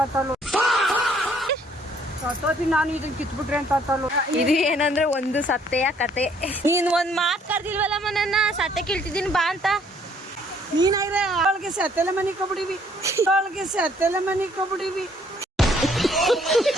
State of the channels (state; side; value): normal; both; correlation 0.63